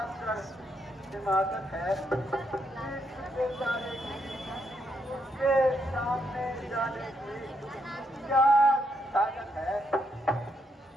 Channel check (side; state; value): both; normal; correlation 0.77